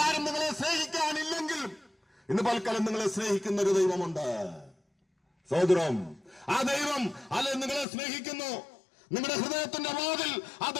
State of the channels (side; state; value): right; drops out; at 7.9 s